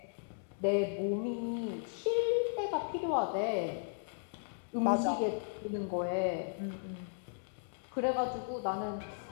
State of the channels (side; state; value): right; silent; digital silence